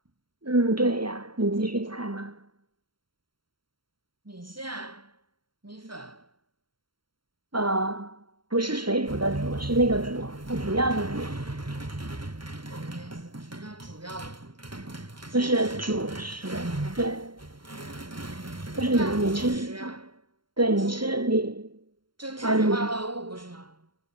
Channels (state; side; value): late; left; 0.73 ms